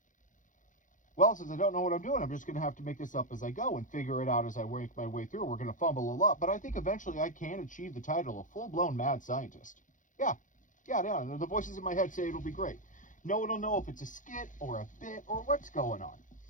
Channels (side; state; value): right; late; 0.37 ms